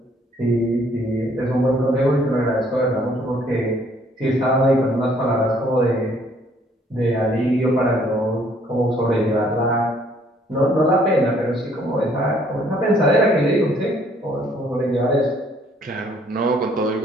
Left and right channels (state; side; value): normal; both; correlation 0.63